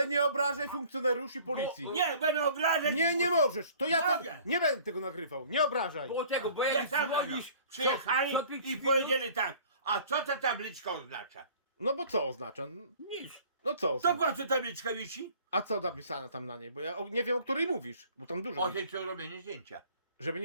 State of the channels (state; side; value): inverted; both; correlation -0.51